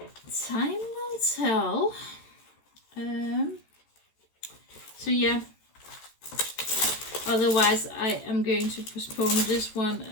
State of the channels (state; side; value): late; right; 14 ms